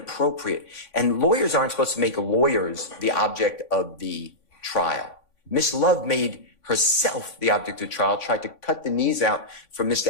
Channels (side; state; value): right; late; 3.6 ms